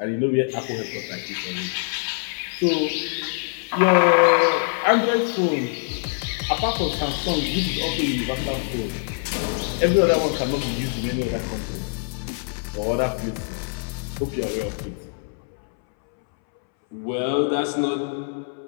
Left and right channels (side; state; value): right; silent; 63 dB below the other